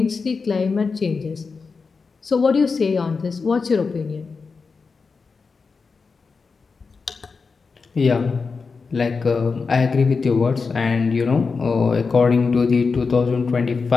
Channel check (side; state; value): right; quieter; 4.8 dB